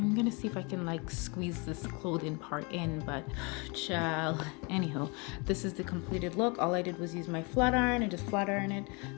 gonna see if I can like squeeze this clothing part in, but child. Anywho, this is the completed look. All I did was use my flat iron and just flat iron it.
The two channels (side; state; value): right; quieter; 30.5 dB